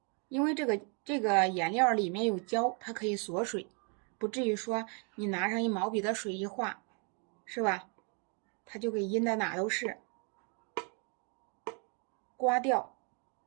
因为这个颜料里面有胶，它可以锁水，不至于说你拿上一毛笔的水一画，是吧？它就给阴的哪都是，刮掉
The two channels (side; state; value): left; quieter; 37.1 dB